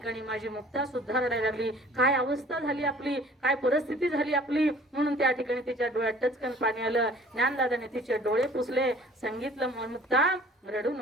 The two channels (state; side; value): normal; both; correlation 0.50